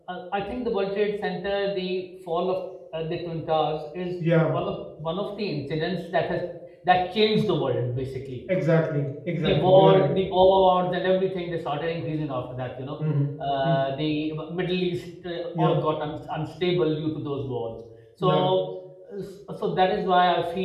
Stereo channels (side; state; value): both; identical; correlation 1.00